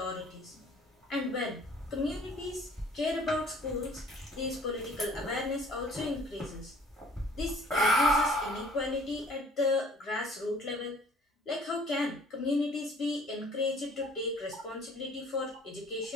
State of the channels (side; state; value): both; normal; correlation 0.54